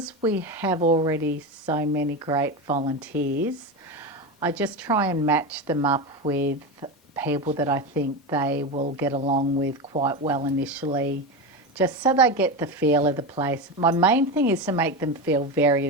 we have already so many great volunteers, I just try and match them up with people that I think they will get along with quite well initially, just so they get the feel of the place. My main thing is to make them feel very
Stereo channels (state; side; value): normal; both; correlation 0.19